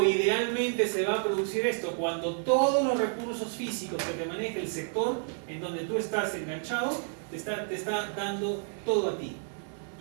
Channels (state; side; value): silent; left; 58 dB below the other